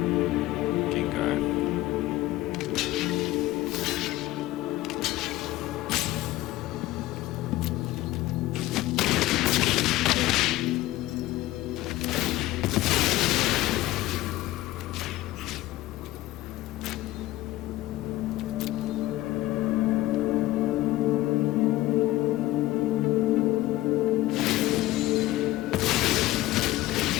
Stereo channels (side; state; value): right; quieter; 16.8 dB